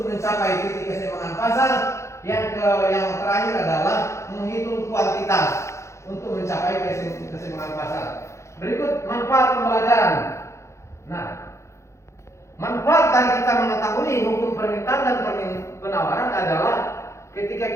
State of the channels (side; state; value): right; late; 0.14 ms